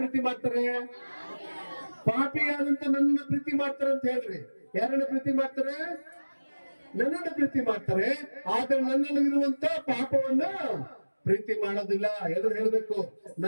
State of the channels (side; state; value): both; inverted; correlation -1.00